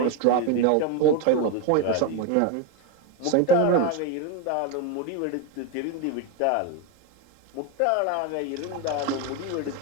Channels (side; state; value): both; different; correlation 0.03